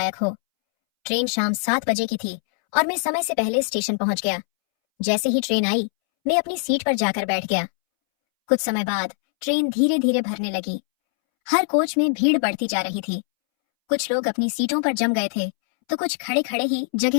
हो। ट्रेन शाम 7 बजे की थी और मैं समय से पहले स्टेशन पहुंच गया। जैसे ही ट्रेन आई, मैं अपनी सीट पर जाकर बैठ गया। कुछ समय बाद ट्रेन धीरे धीरे भरने लगी। हर कोच में भीड़ बढ़ती जा रही थी। कुछ लोग अपनी सीटों पर जम गए थे तो कुछ खड़े खड़े ही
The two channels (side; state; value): right; silent; 64 dB below the other